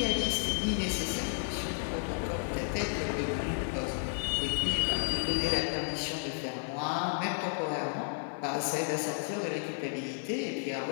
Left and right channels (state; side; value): silent; right; 56 dB below the other